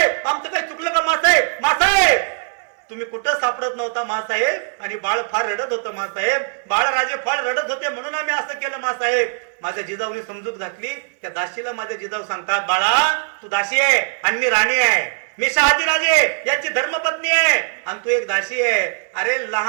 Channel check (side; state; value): left; silent; 66 dB below the other